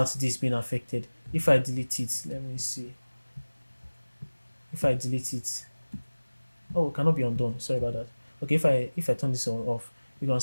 this being affected. If I delete it, let me see. If I delete it, oh, it cannot be undone. Sorry about that. Okay, if I turn this on off, you can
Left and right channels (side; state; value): both; inverted; correlation -1.00